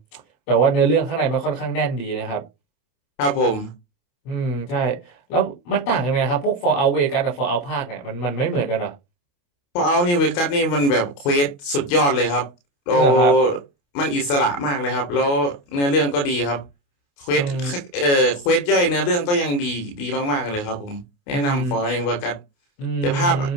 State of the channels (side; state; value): right; late; 28 ms